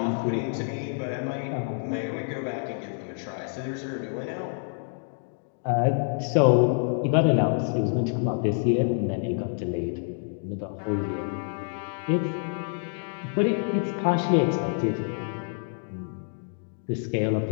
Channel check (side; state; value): right; silent; digital silence